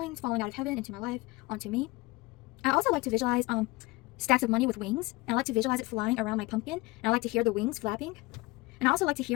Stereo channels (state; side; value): quieter; right; 22.3 dB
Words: falling out of heaven into my life, onto me. I also like to visualize stacks of money with wings, and I like to visualize it flying around my pumpkin, and I like to hear the wings flapping. And I also like to